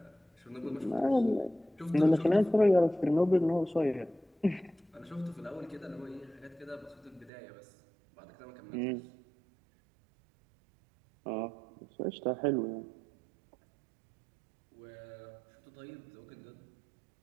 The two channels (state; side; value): drops out; left; at 7.3 s